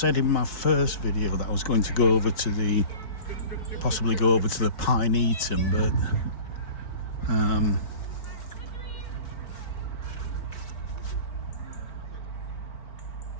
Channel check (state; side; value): late; right; 4.4 ms